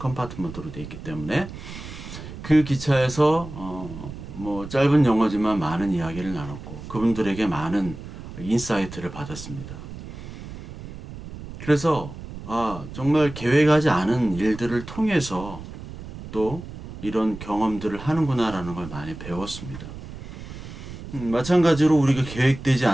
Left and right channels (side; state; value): right; noise; rumble, 12 dB below the sound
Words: 되어 있기 때문에 그 기차에서 뭐 짧은 영어지만 많은 이야기를 나눴고 그분들에게 많은 인사이트를 받았습니다. 그래서 정말 계획하지 않은 일들을 통해서 또 이런 경험들을 하는구나라는 걸 많이 배웠습니다. 마찬가지로 우리가 계획되지